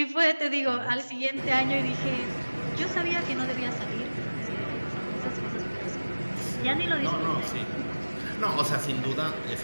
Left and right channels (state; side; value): inverted; both; correlation -1.00